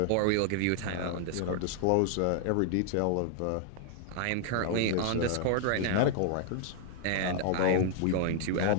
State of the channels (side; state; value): both; different; correlation 0.00